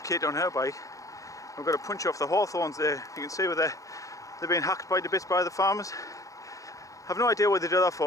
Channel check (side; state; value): right; late; 0.16 ms